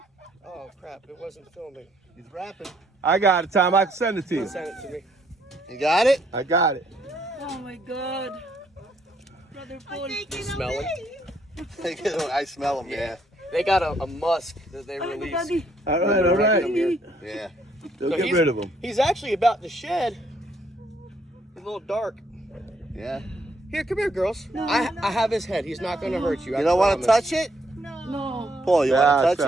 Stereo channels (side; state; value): both; normal; correlation 0.70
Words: Oh crap! It wasn't filming. He's rapping. I got it, Tom. I can send it to you. Send it to me. You got it? I got it. Oh my God! Brother Paul. Smell it. I smell him, yeah. They got a musk that they release. Daddy. All right, all right. Yeah. Don't So get rid of him. He's actually about to shed. He's a little dark. Yeah. Here, come here, girls. I have his head. He's not going to hurt you. You don't want to touch it? No. Paul, you want to That's touch